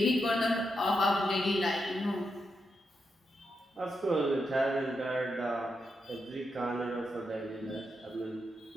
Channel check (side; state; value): both; normal; correlation 0.84